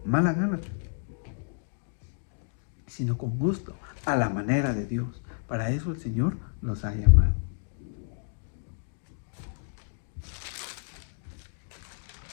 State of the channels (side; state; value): right; silent; digital silence